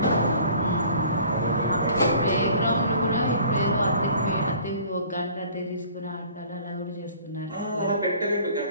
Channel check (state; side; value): inverted; both; correlation -0.50